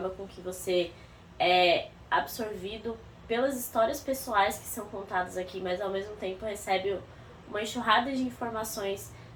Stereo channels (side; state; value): both; identical; correlation 1.00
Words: com que você é absorvido pelas histórias pessoais que são contadas aqui, mas ao mesmo tempo recebe uma enxurrada de informações